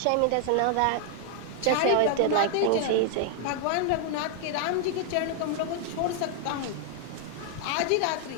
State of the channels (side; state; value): both; different; correlation 0.00